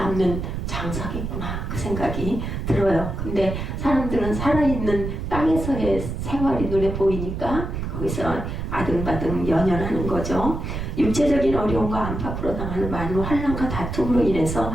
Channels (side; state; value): right; noise; rumble, 5 dB below the sound